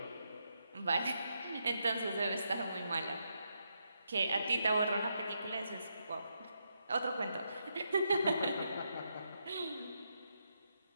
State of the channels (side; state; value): both; inverted; correlation -0.81